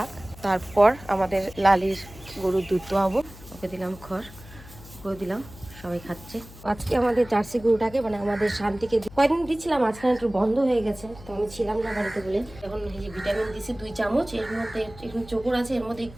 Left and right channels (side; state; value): left; noise; hum, 18 dB below the sound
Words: তারপর আমাদের লালির গরুর দুধ দোয়াবো। ওকে দিলাম খড়, ওকে দিলাম, সবাই খাচ্ছে। আজকে আমাদের জার্সি গরুটাকে মানে আমাদের শান্তিকে কয়েকদিন দিচ্ছিলাম, আজকাল একটু বন্ধ হয়ে গেছে, তো আমি ছিলাম না বাড়িতে বলে। এখন এই যে ভিটামিন দিছি 2 চামচ, এর মধ্যে একটু চোকর আছে, এর মধ্যে